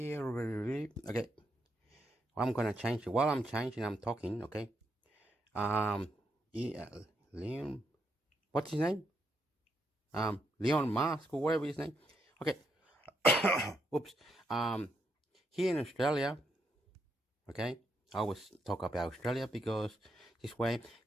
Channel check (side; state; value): both; normal; correlation 0.79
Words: Okay. I'm going to change it. While I'm changing, I'm talking, okay? Leon, what's his name? Leon Musk or whatever his name. Okay. Oops. here in Australia, okay, I always talk about Australia because this way,